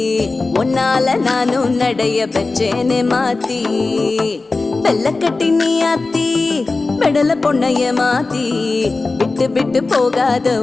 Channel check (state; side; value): quieter; right; 3.6 dB